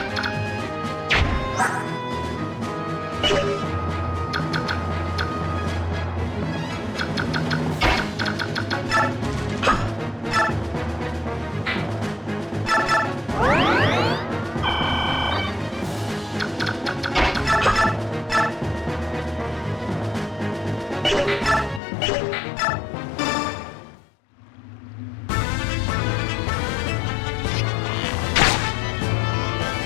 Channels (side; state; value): right; drops out; at 21.8 s